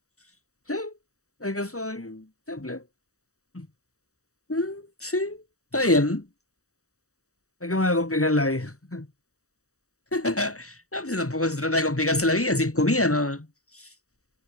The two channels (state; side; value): late; right; 0.65 ms